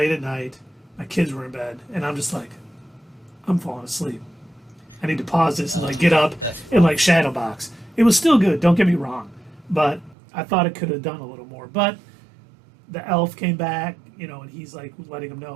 at night, my kids were in bed, and I'm just like, I'm falling asleep. I need to pause this and get up and shadow box. It was still good, don't get me wrong, but I thought it could have done a little more. But the elf came back, and he's letting them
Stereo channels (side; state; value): left; drops out; at 10.2 s